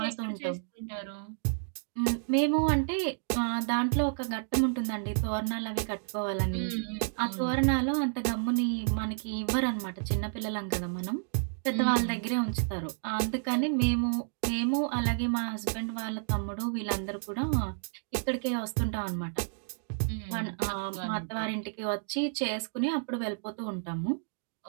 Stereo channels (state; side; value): silent; left; digital silence